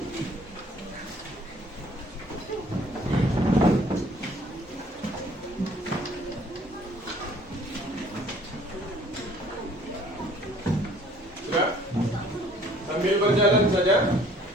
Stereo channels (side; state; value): both; normal; correlation 0.56